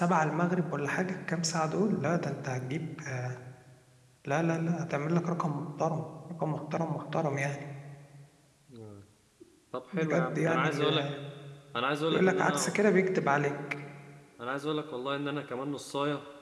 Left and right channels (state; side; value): identical; both; correlation 1.00